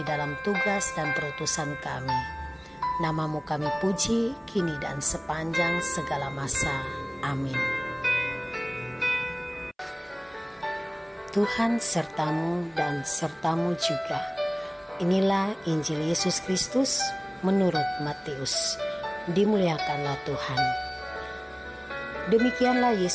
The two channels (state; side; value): identical; both; correlation 1.00